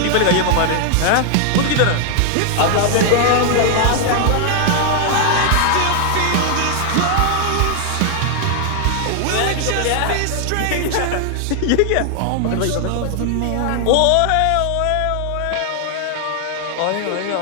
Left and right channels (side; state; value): both; different; correlation 0.00